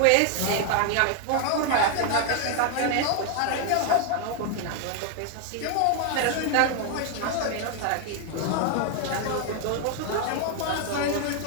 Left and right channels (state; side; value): different; both; correlation 0.00